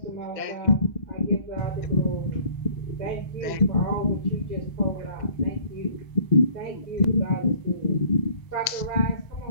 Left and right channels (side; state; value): right; late; 2.0 ms